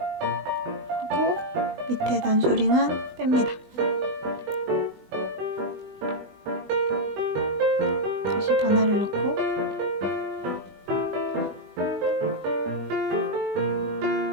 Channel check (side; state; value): left; late; 20 ms